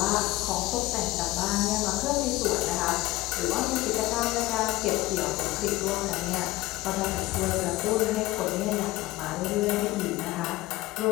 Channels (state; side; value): quieter; right; 18.7 dB